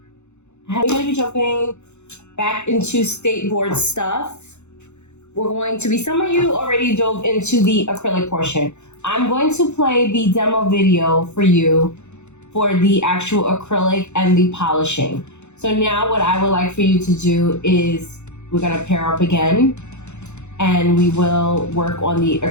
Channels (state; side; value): late; right; 0.83 ms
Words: We're going to be jumping back into state board stuff. We're going to be, some of you already dove into the acrylic portion. I'm going to play the demo video for you for the actual acrylic and the polishing. So now what I would like for you to do is we're going to pair up again and we will work on the